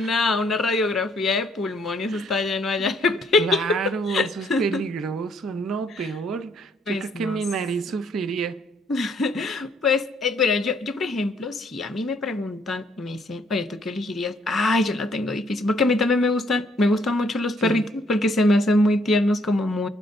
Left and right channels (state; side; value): normal; both; correlation 0.67